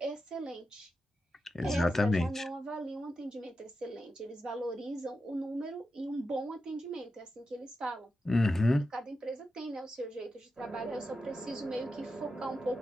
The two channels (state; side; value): normal; both; correlation 0.89